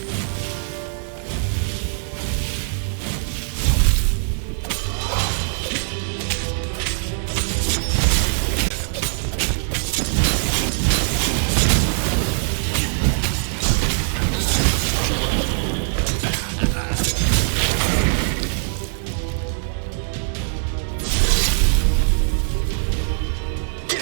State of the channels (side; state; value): left; silent; digital silence